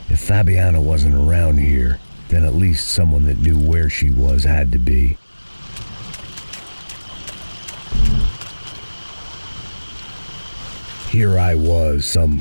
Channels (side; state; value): both; inverted; correlation -1.00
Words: If Fabiana wasn't around here, then at least someone that knew where she was had to be. Here I was, some